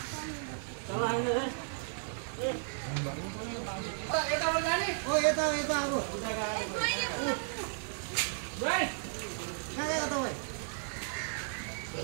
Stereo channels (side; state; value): left; silent; 55 dB below the other